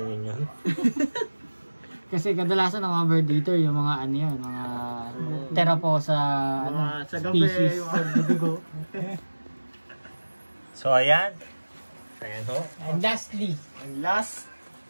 yun. Kasi kadalasan ng mga bird eater, yung mga ano yun, mga Teraposa Sa gabi, species. dugo. So, ayan. Ayan ho. And lastly, And last,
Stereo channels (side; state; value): both; inverted; correlation -1.00